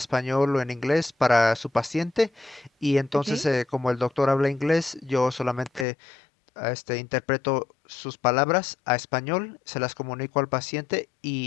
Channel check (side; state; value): right; drops out; at 5.9 s